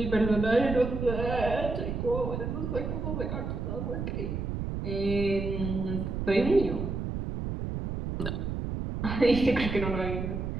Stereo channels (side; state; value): right; noise; rumble, 3 dB below the sound